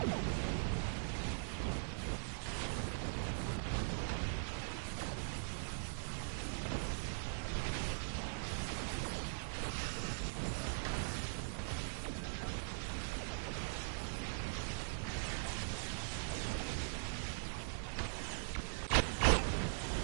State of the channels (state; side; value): silent; left; digital silence